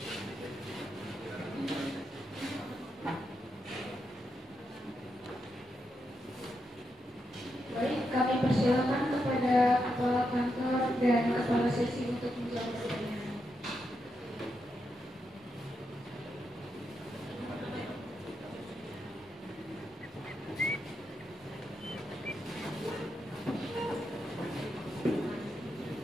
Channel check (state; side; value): normal; both; correlation 0.84